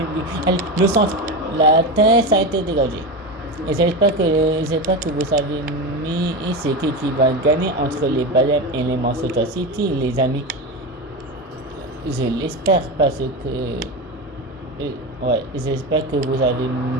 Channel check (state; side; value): normal; both; correlation 0.20